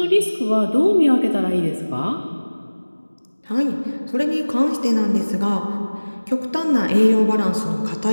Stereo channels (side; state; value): both; inverted; correlation -1.00